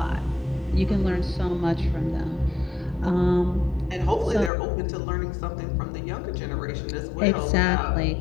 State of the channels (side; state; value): right; drops out; at 4.5 s